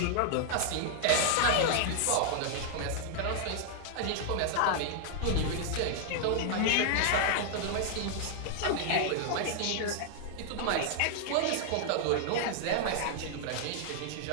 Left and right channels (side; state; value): both; different; correlation 0.00